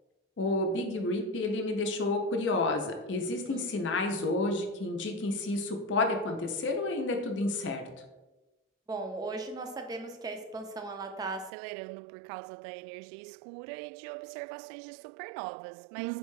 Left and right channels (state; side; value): drops out; left; at 11.5 s